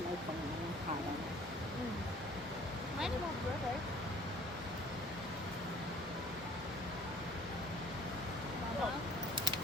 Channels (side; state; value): both; normal; correlation 0.53